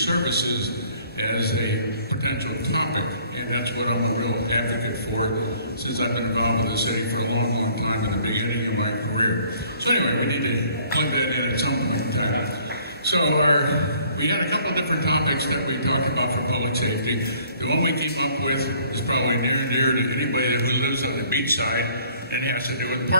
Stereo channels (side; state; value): both; inverted; correlation -0.58